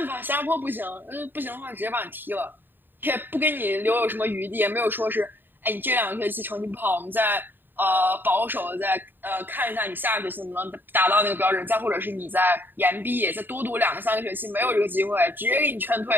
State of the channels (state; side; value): late; left; 0.093 ms